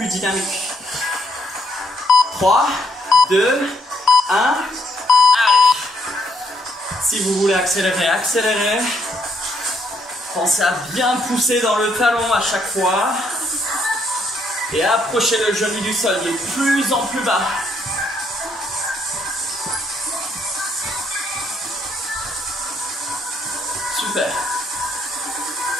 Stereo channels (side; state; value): both; normal; correlation 0.71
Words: dynamique. 3, 2, 1. Allez. Si vous voulez accélérer, accélérez. Pensez à bien pousser dans le talon à chaque fois. Et approchez le genou du sol. Il est de plus en plus bas. Super.